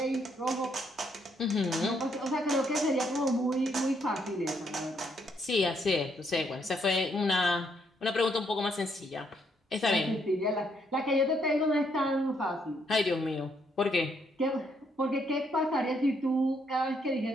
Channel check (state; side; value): normal; both; correlation 0.73